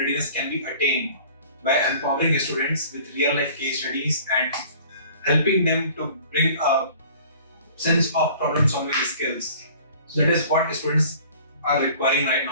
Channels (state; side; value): inverted; both; correlation -0.49